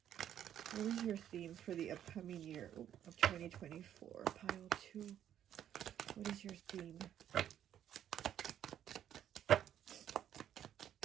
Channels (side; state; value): left; quieter; 10.4 dB